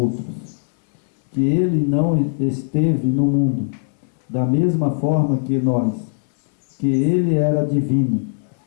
que ele não esteve no mundo da mesma forma que nós, que ele era divino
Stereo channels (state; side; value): silent; right; 64 dB below the other